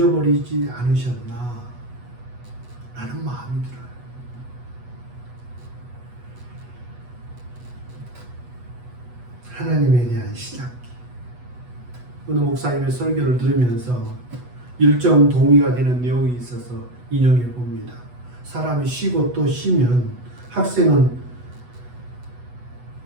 않으셨나? 라는 마음이 들어요. 하나님에 대한 시장기. 어느 목사님의 설교를 들으면서 일정 동의가 되는 내용이 있어서 인용해 봅니다. 사람이 쉬고 또 쉬면 학생은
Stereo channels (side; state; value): left; late; 8.1 ms